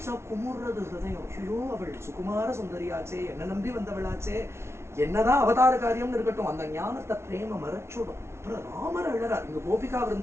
குமுறது ஹிருதயம். ஐயோ அவள் சுகுமார சுந்தரியாச்சே, என்ன நம்பி வந்தவளாச்சே, என்னதான் அவதார காரியம்னு இருக்கட்டும், அந்த ஞானத்தை பிரேம மறைச்சுடும். அப்புறம் ராமர் அழறார். இங்க கோபிகா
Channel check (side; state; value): left; late; 0.13 ms